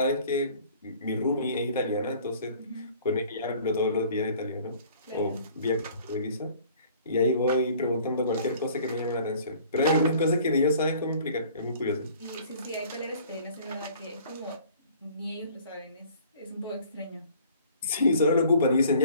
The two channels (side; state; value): both; inverted; correlation -0.52